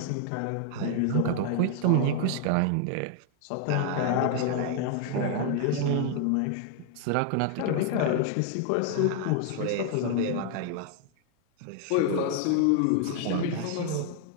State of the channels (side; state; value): both; different; correlation 0.00